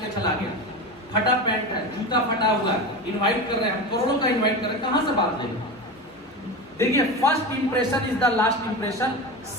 चला गया, फटा पैंट है, जूता फटा हुआ है, इनवाइट कर रहे हैं, करोड़ों का इनवाइट कर रहे हैं, कहां से बात लेंगे? देखिए first impression is the last impression.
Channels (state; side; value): normal; both; correlation 0.25